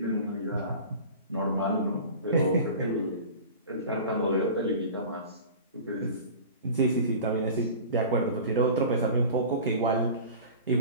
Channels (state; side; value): inverted; both; correlation -0.37